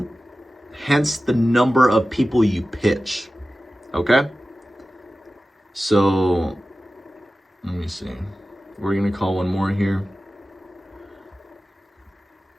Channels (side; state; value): both; normal; correlation 0.95